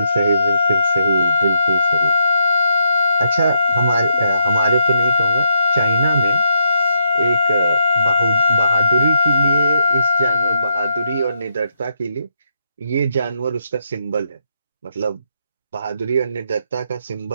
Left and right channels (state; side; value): inverted; both; correlation -0.79